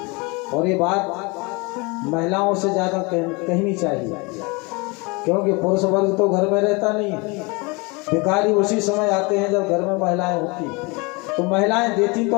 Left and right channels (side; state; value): right; quieter; 28.0 dB